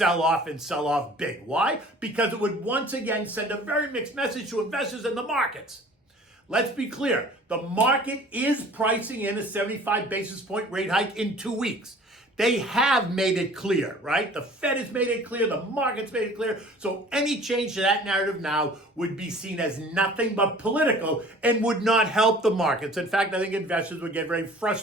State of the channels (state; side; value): normal; both; correlation 0.48